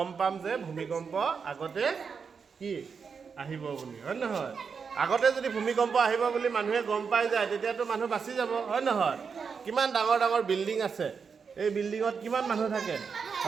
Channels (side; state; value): left; quieter; 5.9 dB